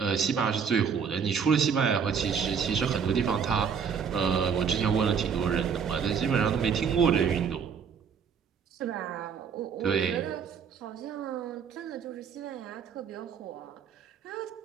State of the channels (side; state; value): left; quieter; 6.7 dB